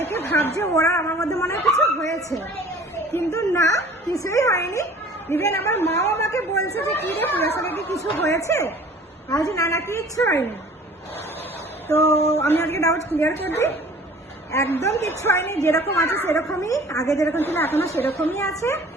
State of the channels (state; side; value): normal; both; correlation 0.48